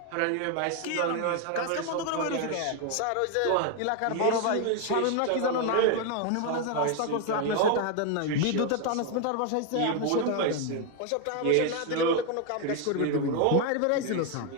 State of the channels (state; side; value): different; both; correlation 0.01